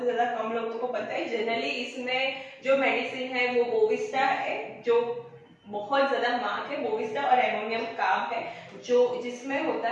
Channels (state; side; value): identical; both; correlation 1.00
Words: ज्यादा कम लोगों को पता है। जनरली इसमें जो मेडिसिन है वो बोविस्टा है, जो बहुत ज्यादा मार्क है, बोविस्टा और एमोनियम कार्ब है, जो जिसमें होता